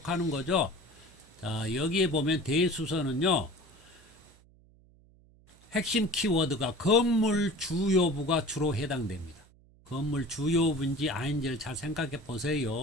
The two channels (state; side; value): noise; right; hum, 28 dB below the sound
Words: 거죠. 자, 여기에 보면 대수선은요. 핵심 키워드가 건물 주요부가 주로 해당됩니다. 건물 주요부인지 아닌지를 잘 생각해